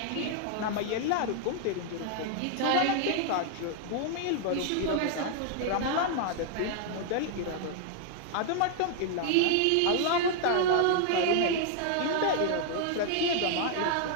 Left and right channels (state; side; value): different; both; correlation 0.00